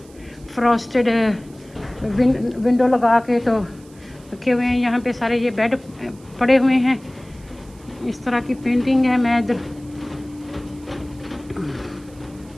फ्रॉस्टेड विंडो लगा के तो रखे हुए हैं। यहाँ पे सारे ये बेड पड़े हुए हैं, इस तरह की पेंटिंग है। मैं इधर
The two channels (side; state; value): right; noise; hiss, 27 dB below the sound